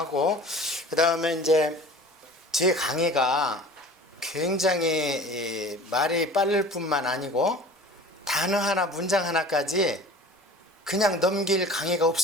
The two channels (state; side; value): normal; both; correlation 0.42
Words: 그 다음에 이제 제 강의가 굉장히 말이 빠를 뿐만 아니고 단어 하나 문장 하나까지 그냥 넘길 강의가